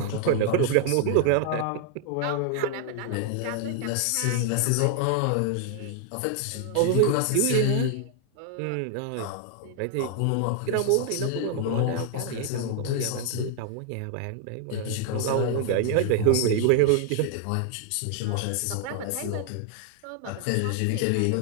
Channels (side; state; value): both; different; correlation 0.00